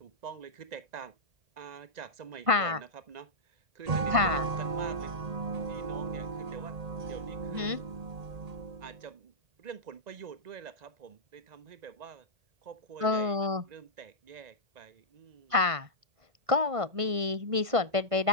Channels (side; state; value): left; late; 1.5 ms